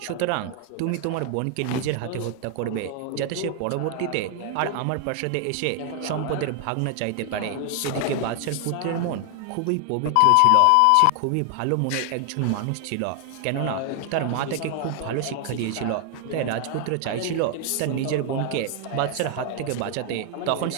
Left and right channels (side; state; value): both; different; correlation 0.00